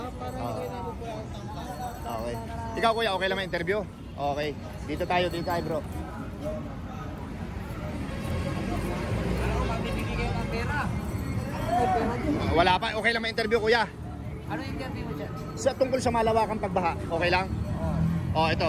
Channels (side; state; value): both; identical; correlation 1.00